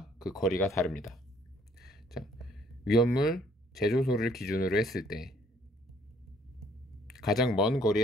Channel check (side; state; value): both; normal; correlation 0.62